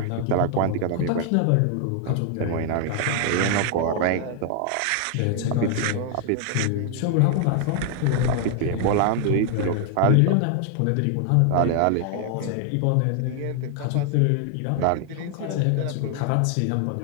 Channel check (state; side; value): different; both; correlation 0.00